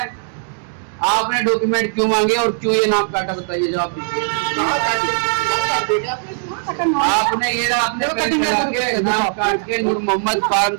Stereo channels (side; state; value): left; silent; digital silence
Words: आपने डॉक्यूमेंट क्यों मांगे और क्यों ये नाम काटा, बताइए जवाब दीजिए। आपने ये ना अपने के नाम काट के नूर मोहम्मद फार्म